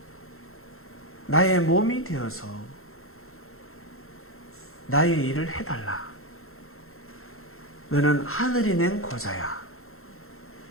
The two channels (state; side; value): late; right; 0.62 ms